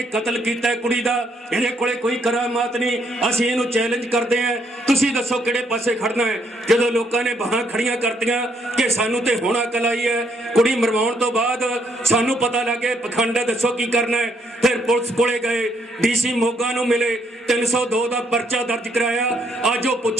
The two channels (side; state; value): both; normal; correlation 0.71